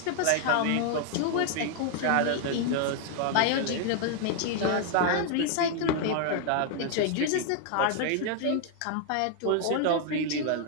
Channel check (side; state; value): both; different; correlation 0.00